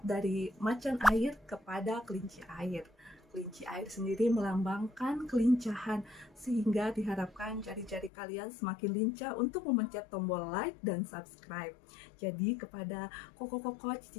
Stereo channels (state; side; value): drops out; right; at 8.1 s